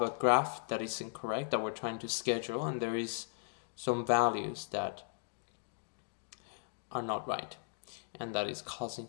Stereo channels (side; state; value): right; silent; digital silence